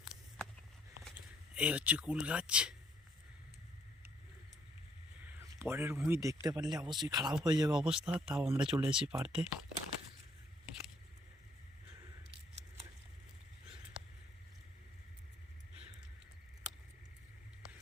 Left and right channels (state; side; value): normal; both; correlation 0.67